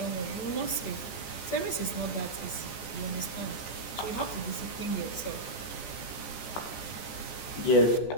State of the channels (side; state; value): right; late; 14 ms